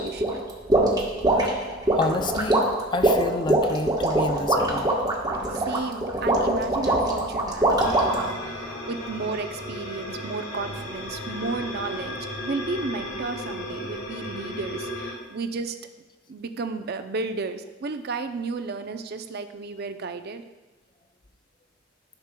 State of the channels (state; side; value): normal; both; correlation 0.34